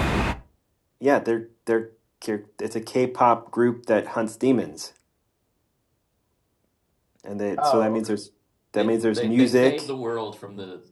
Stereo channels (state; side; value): identical; both; correlation 1.00